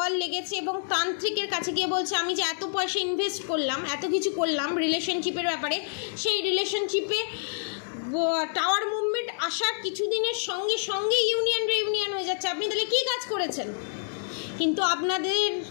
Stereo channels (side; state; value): right; silent; digital silence